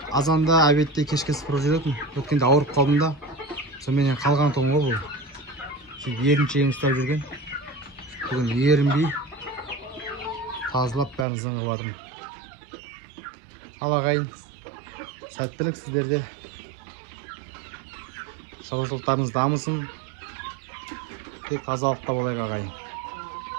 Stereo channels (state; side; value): drops out; left; at 11.2 s